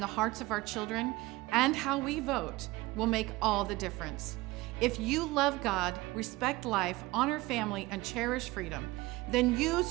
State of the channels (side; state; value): left; quieter; 20.5 dB